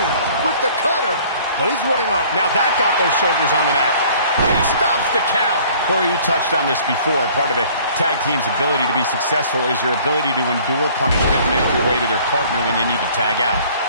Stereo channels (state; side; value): inverted; both; correlation -0.53